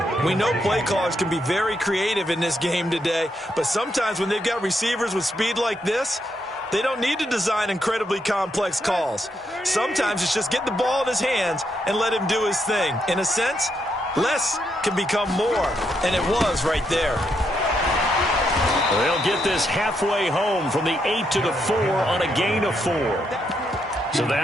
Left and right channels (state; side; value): normal; both; correlation 0.79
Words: We know play callers can be very creative in this game today, but sometimes when they've got receivers with speed like this, they don't need to design incredibly complex calls. Sometimes it's just get the ball in his hands and let him do his thing. In a sense, less can become more, and it was right there. They'll get this halfway home from the 8 to the 4 on a gain of 4. So